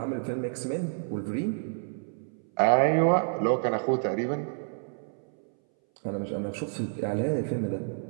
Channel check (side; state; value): left; silent; 59 dB below the other